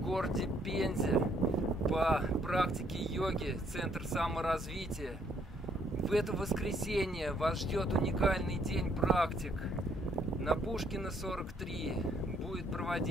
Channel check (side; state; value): both; normal; correlation 0.68